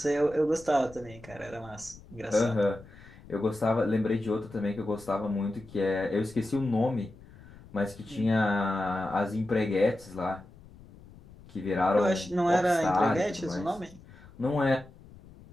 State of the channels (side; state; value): left; noise; rumble, 21 dB below the sound